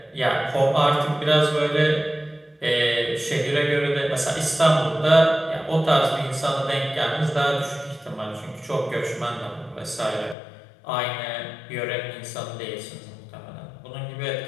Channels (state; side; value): drops out; right; at 10.4 s